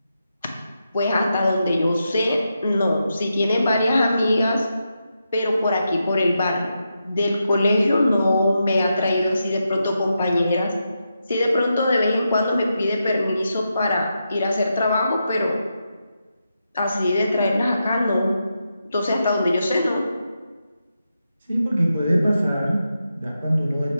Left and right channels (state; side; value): inverted; both; correlation -0.86